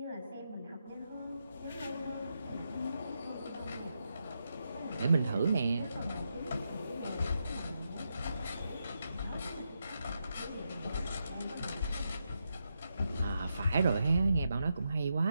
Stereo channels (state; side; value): inverted; both; correlation -0.84